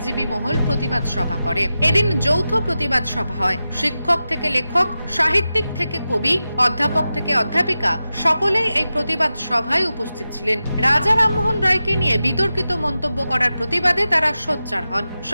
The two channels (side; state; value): both; inverted; correlation -0.93